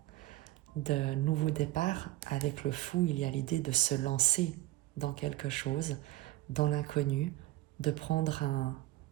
de nouveaux départs. Avec le fou, il y a l'idée de se lancer dans quelque chose, dans l'inconnu, de prendre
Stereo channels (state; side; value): quieter; left; 17.1 dB